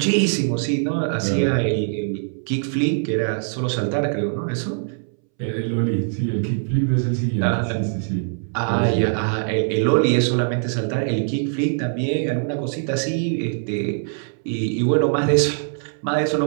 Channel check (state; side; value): silent; left; 64 dB below the other